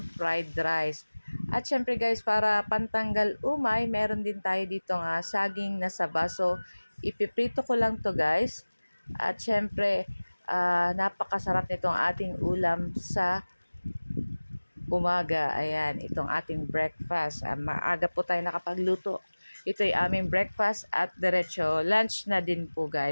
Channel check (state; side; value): inverted; both; correlation -1.00